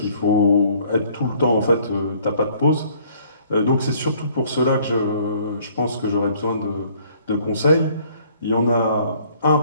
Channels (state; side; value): inverted; both; correlation -0.60